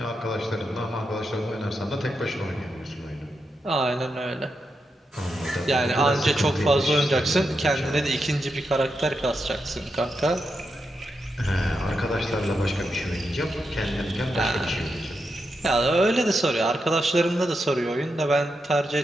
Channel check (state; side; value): normal; both; correlation 0.86